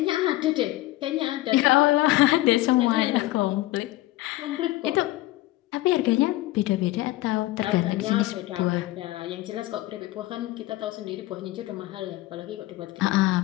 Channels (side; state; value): right; quieter; 17.4 dB